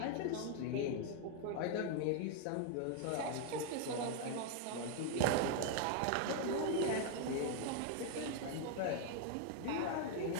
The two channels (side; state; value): both; different; correlation 0.00